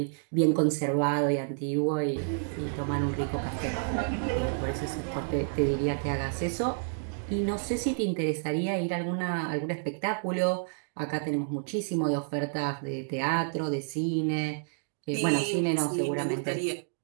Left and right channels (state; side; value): silent; left; digital silence